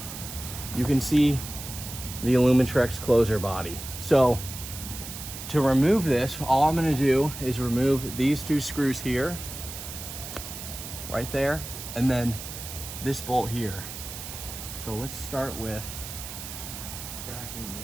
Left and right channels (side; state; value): right; noise; hiss, 10 dB below the sound